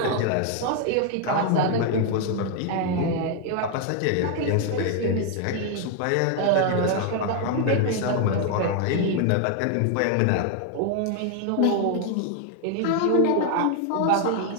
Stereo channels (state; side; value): different; both; correlation 0.00